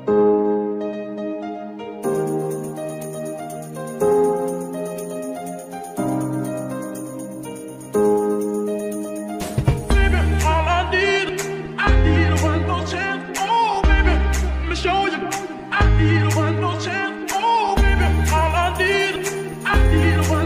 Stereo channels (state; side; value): identical; both; correlation 1.00